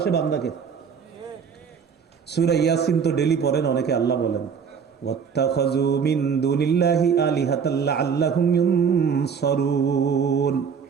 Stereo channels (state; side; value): quieter; left; 6.6 dB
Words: বান্দাকে। সূরা ইয়াসিন তো ডেলি পড়েন অনেকে, আল্লাহ বলেন ওয়াত্তাখাযু মিন দুনিল্লাহি আলিহাতাল লাআল্লাহুম ইউনসারুন